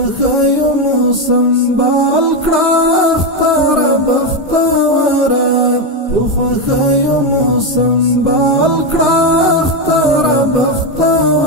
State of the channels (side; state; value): both; normal; correlation 0.09